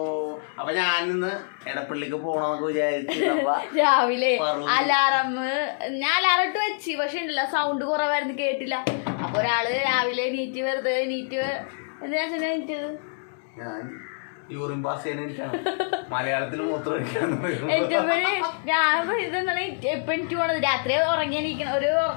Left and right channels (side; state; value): right; silent; digital silence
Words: അപ്പൊ ഞാനിന്ന് എടപ്പള്ളിക്ക് പോണോന്നൊക്കെ വിചാരിച്ചു. രാവിലെ ഞാൻ അലാറം ഇട്ട് വെച്ച്, പക്ഷെ ഉണ്ടല്ലോ സൗണ്ട് കുറവായിരുന്നു, കേട്ടില്ല. അപ്പൊ ഒരാള് രാവിലെ നീറ്റ് വെറുതെ എന്തിനാ നീറ്റത്? ഞാൻ യൂറിൻ പാസ് ചെയ്യാൻ മലയാളത്തിൽ മൂത്രം ഞാൻ ഇതെന്താണ് എപ്പൊ എനിക്ക് പോണത്, രാത്രി ഉറങ്ങി എണീക്കണം, ഒരു